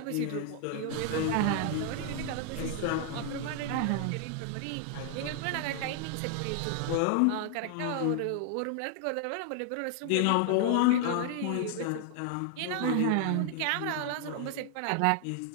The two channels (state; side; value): different; both; correlation 0.00